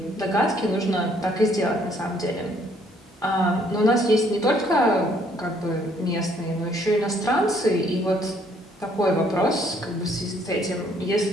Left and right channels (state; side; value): normal; both; correlation 0.65